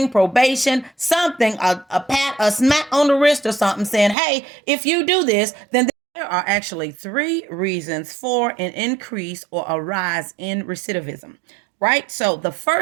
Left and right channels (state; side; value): drops out; left; at 4.2 s